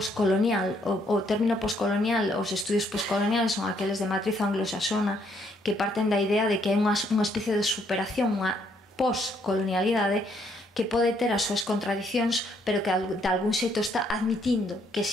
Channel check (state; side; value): normal; both; correlation 0.70